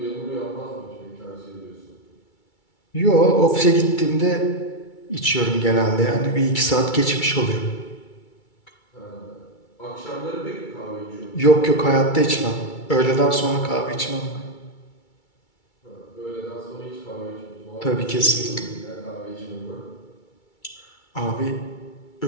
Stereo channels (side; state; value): right; late; 2.3 ms